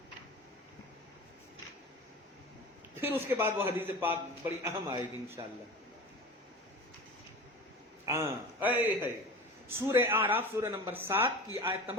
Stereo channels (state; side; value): normal; both; correlation 0.33